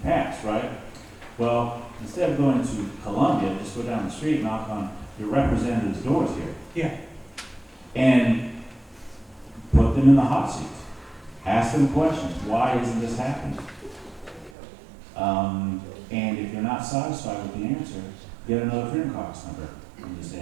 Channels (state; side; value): drops out; left; at 14.5 s